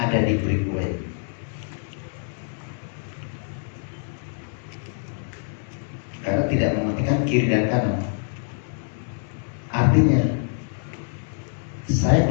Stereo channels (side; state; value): right; silent; 62 dB below the other